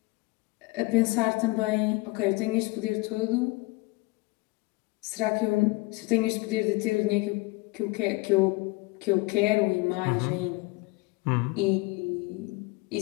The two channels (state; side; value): quieter; right; 23.4 dB